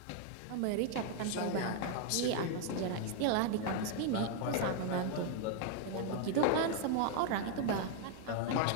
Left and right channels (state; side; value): different; both; correlation 0.00